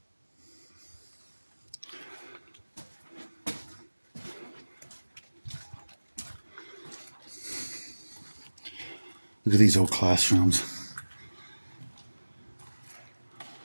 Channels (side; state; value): both; inverted; correlation -1.00